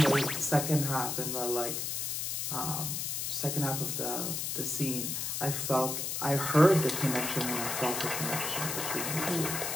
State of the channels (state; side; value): noise; left; hiss, 2 dB below the sound